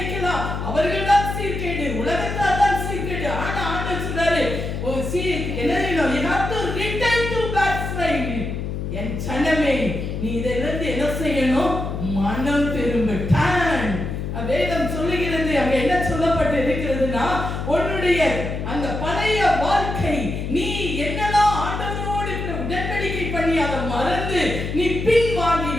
அவர்கள் தான் சீர்கேடு, உலகத்தார் தான் சீர்கேடு. ஆனா ஆண்டவர் சொல்றாரு, என் ஜனமே நீ இதிலிருந்து என்ன செய்யணும்? மனம் திரும்ப. வேதம் சொல்லுகிறது, அங்க என்ன சொல்லப்பட்டு இருக்கிறதுனா, உன்னுடைய அந்த பழைய வாழ்க்கை நீ என்னதான் ஆண்டவரோடு உடன்படிக்கை பண்ணி அதை மறந்து நீ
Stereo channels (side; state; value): left; noise; hum, 4 dB below the sound